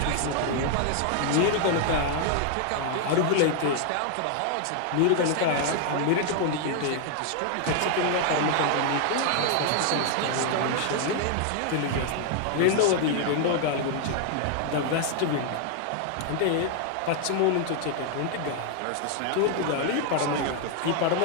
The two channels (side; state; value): both; different; correlation 0.00